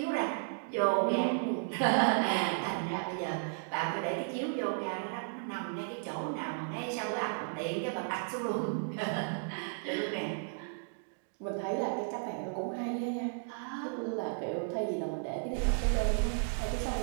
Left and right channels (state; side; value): silent; left; digital silence